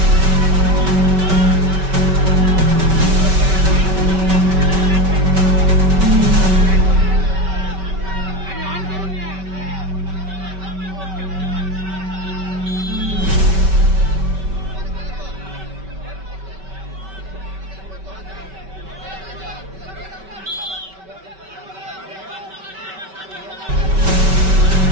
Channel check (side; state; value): left; late; 5.2 ms